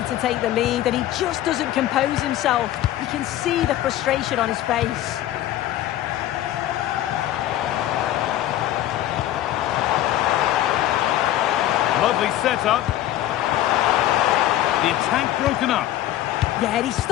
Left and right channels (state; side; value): quieter; right; 13.3 dB